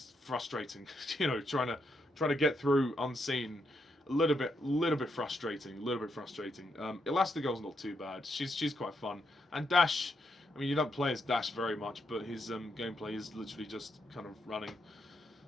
frustrating. Trying to get through unseen. A little bit frustrating. Elastigirl's not too bad. She's quite fun. And Dash, I mean, you don't play as Dash very much, but his gameplay is literally just kind of running.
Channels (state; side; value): normal; both; correlation 0.80